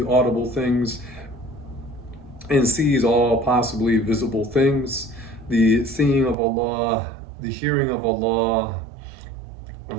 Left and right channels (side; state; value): left; drops out; at 6.4 s